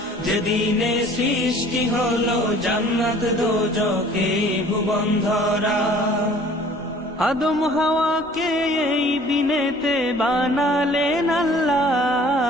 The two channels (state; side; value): normal; both; correlation 0.51